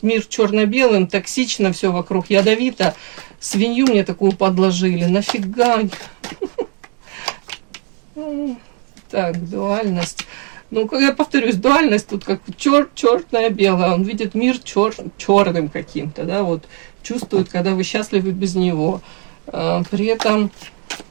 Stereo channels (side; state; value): left; quieter; 39.0 dB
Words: мир черно-белым, токсично, все вокруг ядовито. Свинью мне такую подложили. Нафига? Так, дуальность. Ну, я повторюсь, дуальность тут как черное белое. Он видит мир черным каким-то, да, вот чувствует, когда вы счастливы без него. При этом